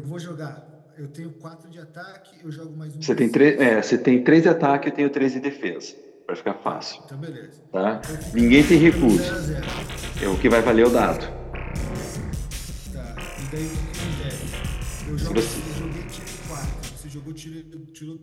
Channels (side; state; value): both; identical; correlation 1.00